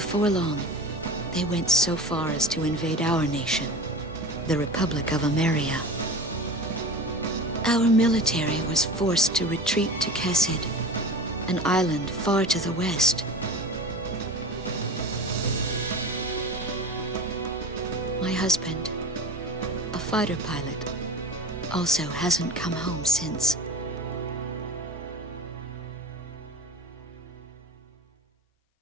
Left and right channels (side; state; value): both; normal; correlation 0.33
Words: long, they went so far as to invade our nation, the Republic of Emeria. Our military was forced to retreat to Kesid, an island far to the west. My husband, a fighter pilot, also hasn't come home since.